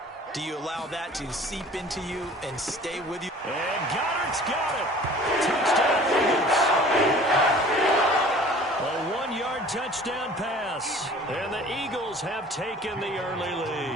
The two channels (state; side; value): normal; both; correlation 0.47